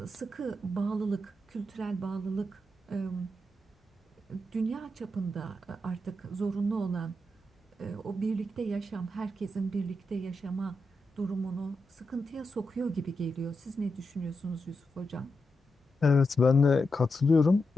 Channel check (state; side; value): normal; both; correlation 0.86